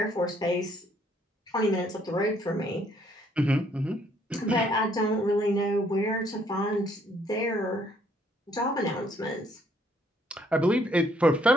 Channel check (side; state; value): both; normal; correlation 0.67